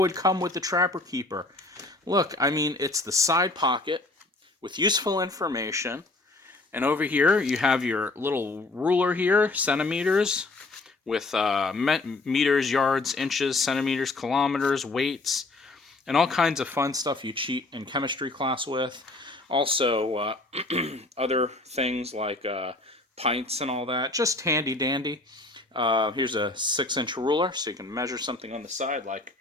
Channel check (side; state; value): right; quieter; 3.0 dB